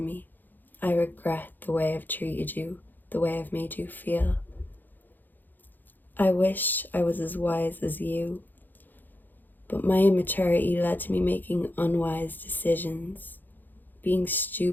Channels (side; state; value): right; late; 0.088 ms